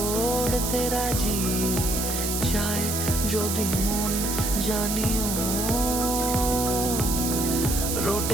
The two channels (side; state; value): right; noise; hiss, 2 dB below the sound